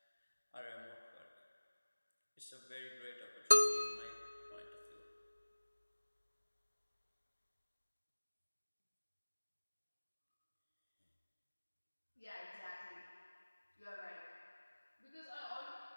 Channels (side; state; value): both; inverted; correlation -1.00